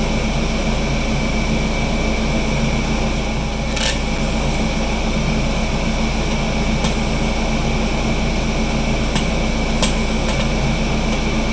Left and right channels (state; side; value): identical; both; correlation 1.00